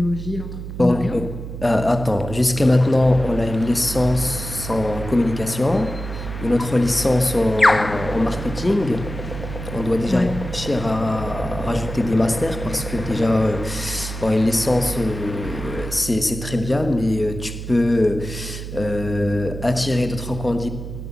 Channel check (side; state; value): right; noise; hum, 9 dB below the sound